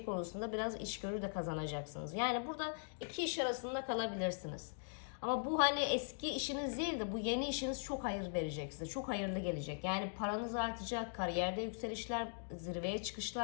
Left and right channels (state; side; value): silent; right; digital silence